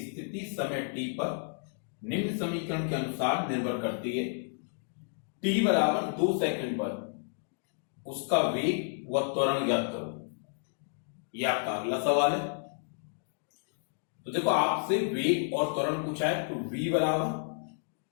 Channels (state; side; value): silent; right; digital silence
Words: स्थिति समय t पर निम्न समीकरण के अनुसार निर्भर करती है। t बराबर 2 सेकंड पर उसका वेग व त्वरण ज्ञात करो। यह आपका अगला सवाल है। तो देखो आपसे वेग और त्वरण पूछा है, तो v बराबर